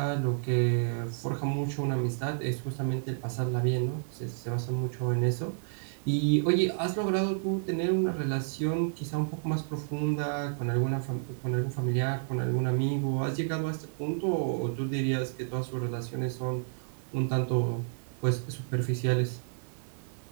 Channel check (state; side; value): silent; left; 57 dB below the other